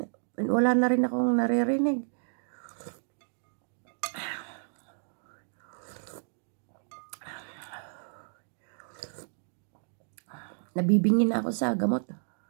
wala na rin akong naririnig. Nabibingin na ako sa gamot.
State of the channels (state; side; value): silent; left; 57 dB below the other